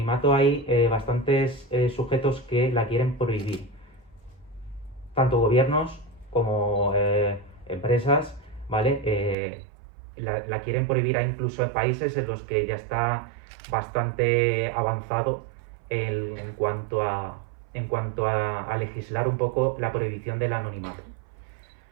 hay bastantes sujetos que la quieren prohibir. Tanto gobiernos como empresas, ¿vale? La quieren prohibir. Hay incluso países en los que ya está bastante avanzado en cuanto a legislar un poco la prohibición del anonimato.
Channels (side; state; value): left; drops out; at 9.3 s